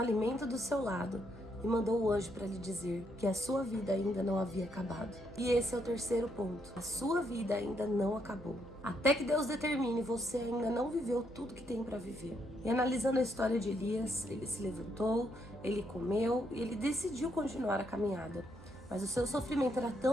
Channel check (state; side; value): noise; right; hum, 19 dB below the sound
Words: do seu lado e mandou o anjo para lhe dizer que a sua vida ainda não havia acabado. E esse é o terceiro ponto. A sua vida ainda não acabou. Até que Deus determine, você ainda não viveu tudo que tem para viver. E analisando a história de Elias, ele se levantou, ele comeu e ele decidiu continuar a caminhada. Mas o seu sofrimento era